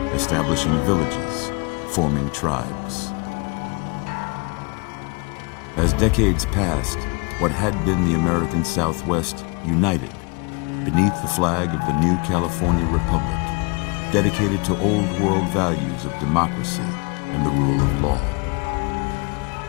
establishing villages, forming tribes. As decades passed, what had been the American Southwest united beneath the flag of the new California Republic, dedicated to old world values of democracy and the rule of law.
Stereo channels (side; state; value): right; quieter; 31.3 dB